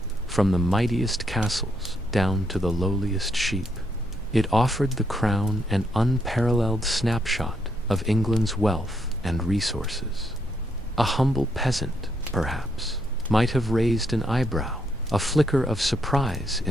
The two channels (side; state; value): both; normal; correlation 0.76